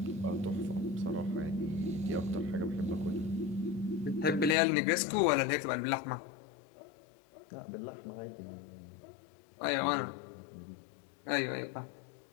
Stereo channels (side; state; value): right; drops out; at 4.5 s